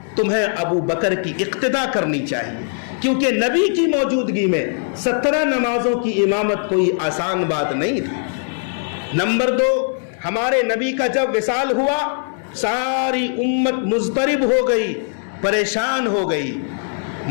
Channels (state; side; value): silent; right; digital silence